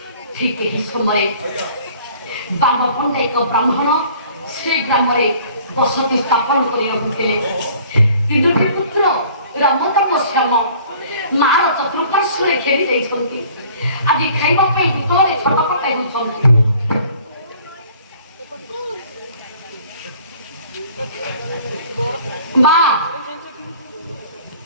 ঠিক এই সময়ে বামপন্থা এক ব্রাহ্মণ সেই গ্রামে বসতি স্থাপন করে রহুଥିଲେ। তিনোটি পুত্র রাম তপস্যাম ମାର ଚତୁଃପାର୍ଶ୍ୱରେ ଘେରି ଯାଇଛନ୍ତି। ଆଜି ଖାଇବା ପାଇଁ ଭିତରେ ଛଟପଟ ହେଉଛନ୍ତି। ମା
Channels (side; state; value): both; inverted; correlation -0.52